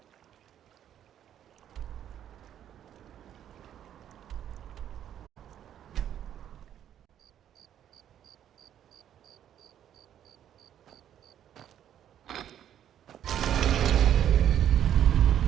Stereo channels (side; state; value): left; quieter; 10.3 dB